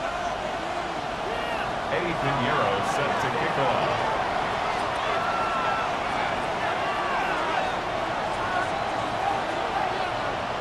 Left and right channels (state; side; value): identical; both; correlation 1.00